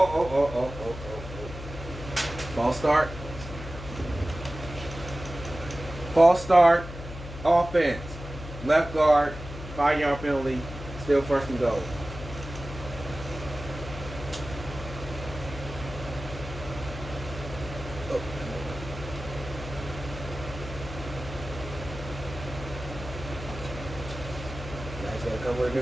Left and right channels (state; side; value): noise; left; hum, 11 dB below the sound